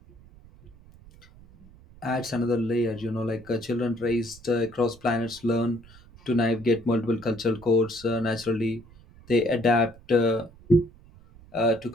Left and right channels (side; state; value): right; noise; rumble, 23 dB below the sound